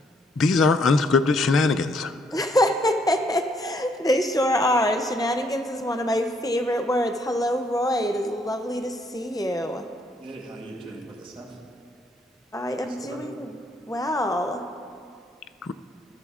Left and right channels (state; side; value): normal; both; correlation 0.69